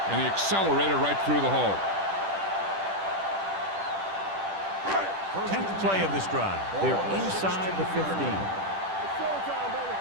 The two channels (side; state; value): left; late; 10 ms